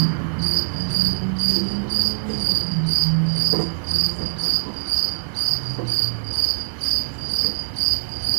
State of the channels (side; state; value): left; silent; digital silence